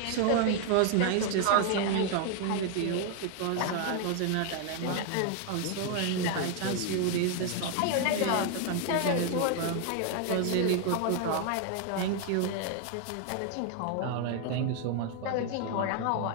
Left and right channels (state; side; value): different; both; correlation 0.00